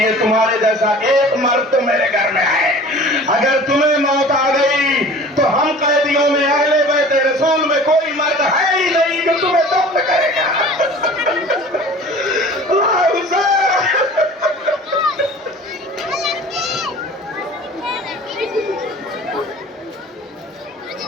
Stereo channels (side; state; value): both; normal; correlation 0.43